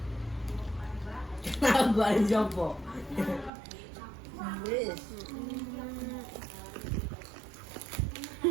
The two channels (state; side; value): drops out; left; at 3.5 s